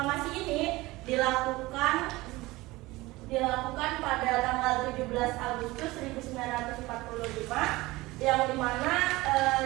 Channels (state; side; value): quieter; left; 20.2 dB